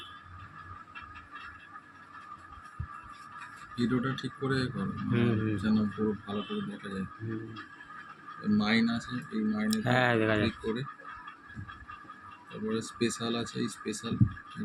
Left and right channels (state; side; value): identical; both; correlation 1.00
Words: ভিডিওটা ঠিক করে করো যেন পুরো ভালো করে দেখা যায়। মাইন আছে, এই মাইনে ক্লিক করে তারপরে স্পেশাল আছে, এই স্পেশাল